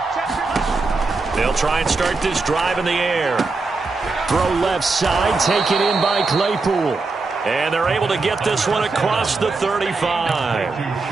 They'll try and start this drive in the air. Throw left side, taken in by Claypool. And they're able to get this one across the 35.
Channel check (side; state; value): left; quieter; 3.8 dB